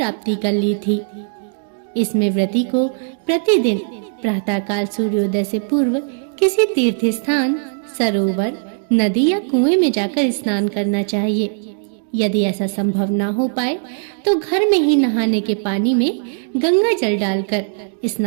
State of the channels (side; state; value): left; silent; 67 dB below the other